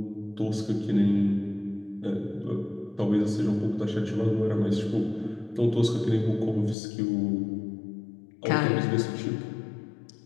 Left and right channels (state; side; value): drops out; right; at 6.8 s